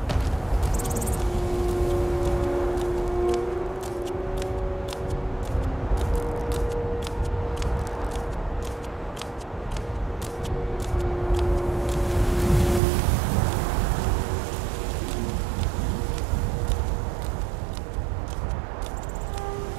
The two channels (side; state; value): left; drops out; at 12.8 s